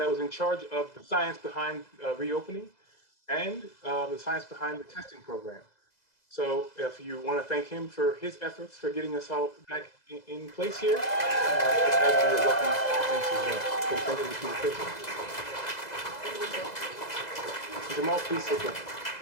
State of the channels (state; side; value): late; right; 2.0 ms